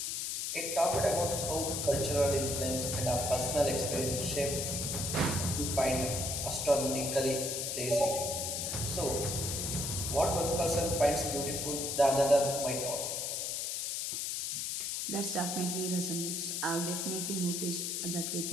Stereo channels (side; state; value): left; noise; hiss, 2 dB below the sound